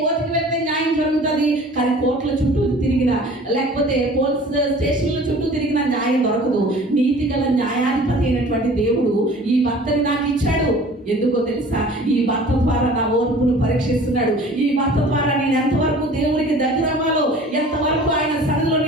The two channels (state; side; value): normal; both; correlation 0.46